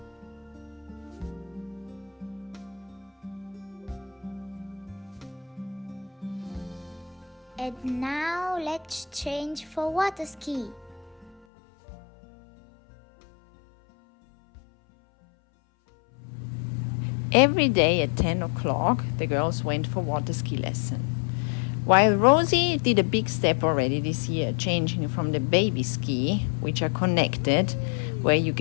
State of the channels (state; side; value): drops out; right; at 11.4 s